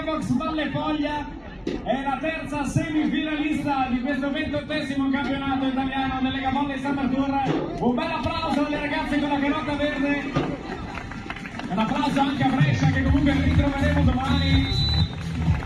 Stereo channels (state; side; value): identical; both; correlation 1.00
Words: Valle Foglia è la terza semifinalista di questo 28esimo campionato italiano del Lega Volley Summer Tour. Un bel applauso alle ragazze con la carota verde, un applauso anche a Brescia che comunque ritroveremo domani.